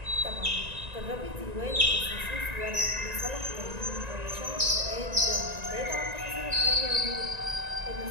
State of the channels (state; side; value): late; left; 1.9 ms